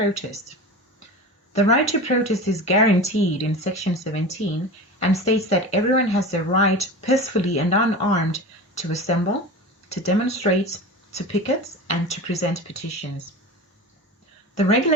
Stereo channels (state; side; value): normal; both; correlation 0.31